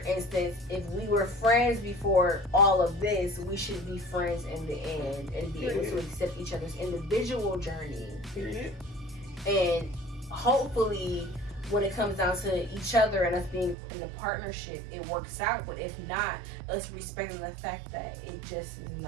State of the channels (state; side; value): drops out; left; at 13.8 s